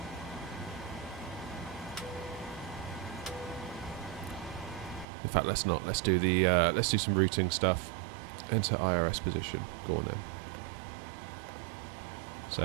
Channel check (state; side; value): drops out; left; at 5.1 s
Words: In fact, let's not. Let's do the. Let's do some routing stuff. Enter IRS position. Go on then. So